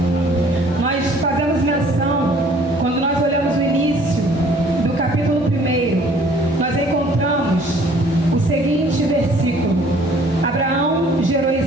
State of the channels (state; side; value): normal; both; correlation 0.56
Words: Nós fazemos menção, quando nós olhamos o início do capítulo 1, nós encontramos o seguinte versículo: Abraão gerou